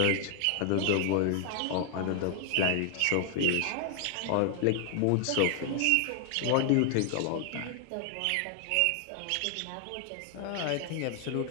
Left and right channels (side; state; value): both; different; correlation 0.00